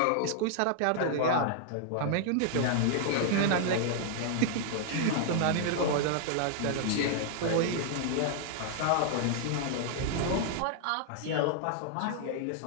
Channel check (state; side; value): different; both; correlation 0.00